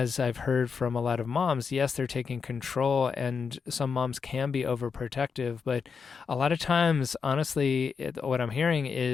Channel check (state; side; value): quieter; right; 5.7 dB